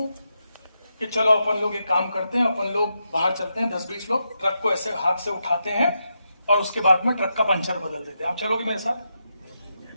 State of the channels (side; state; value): both; inverted; correlation -0.85